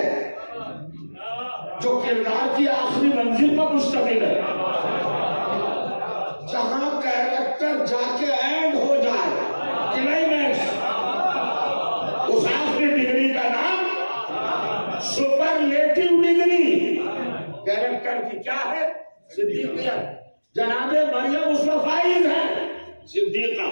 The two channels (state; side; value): inverted; both; correlation -1.00